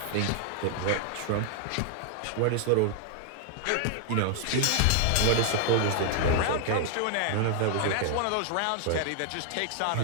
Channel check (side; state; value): both; different; correlation 0.00